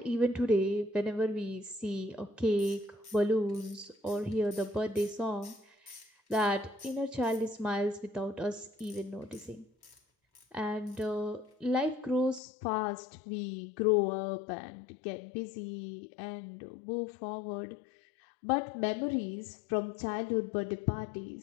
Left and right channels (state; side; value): drops out; right; at 12.4 s